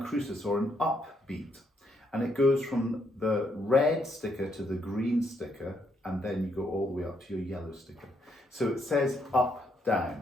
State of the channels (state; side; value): normal; both; correlation 0.75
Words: or an upbeat. And it goes from the red sticker to the green sticker, and then you go all the way up to your yellow sticker. So it says up,